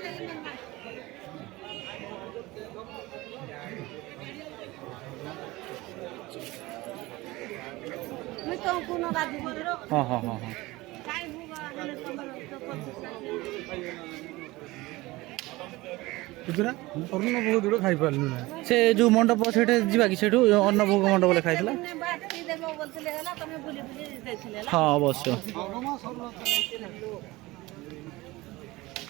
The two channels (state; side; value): quieter; left; 20.4 dB